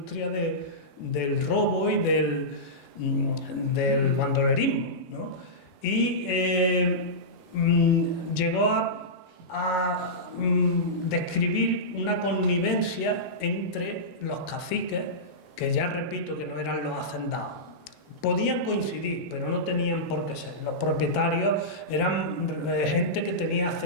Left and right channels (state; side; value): normal; both; correlation -0.15